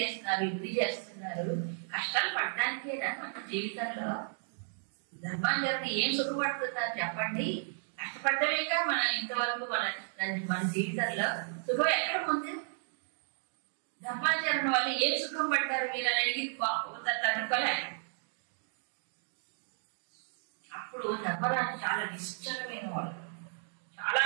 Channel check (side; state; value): left; silent; digital silence